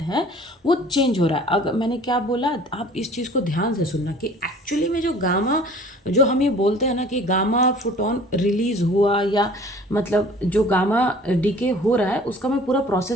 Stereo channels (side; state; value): both; normal; correlation 0.48